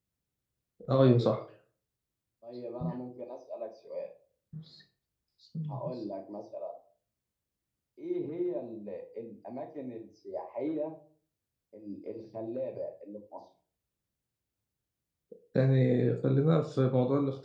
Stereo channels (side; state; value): both; identical; correlation 1.00